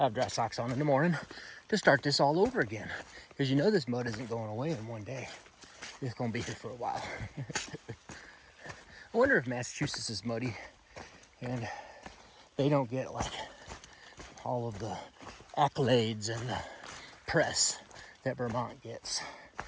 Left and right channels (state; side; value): identical; both; correlation 1.00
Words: have dry socks on in the morning to start this all over again. Because you know this mud isn't going away in one day. It's going to be here for a while. I wonder if Massachusetts is muddy and they don't get like all of the accolades and the press that Vermont gets.